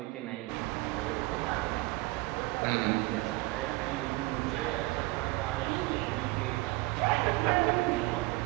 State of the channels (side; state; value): left; quieter; 22.3 dB